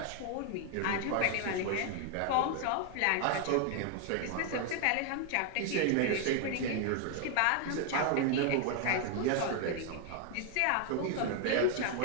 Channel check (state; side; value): different; both; correlation 0.00